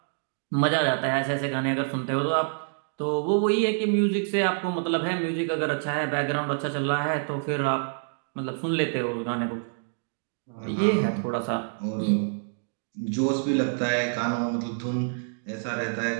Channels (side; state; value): left; silent; digital silence